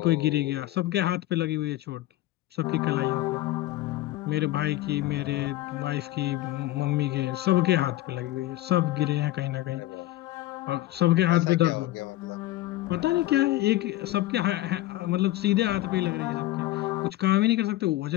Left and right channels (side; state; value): right; quieter; 16.2 dB